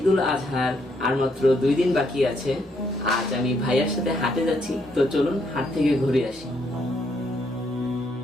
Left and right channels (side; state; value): both; normal; correlation 0.73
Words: আজহার আর মাত্র 2 দিন বাকি আছে। আজ আমি ভাইয়ার সাথে হাটে যাচ্ছি, তো চলুন হাট থেকে ঘুরে আসি।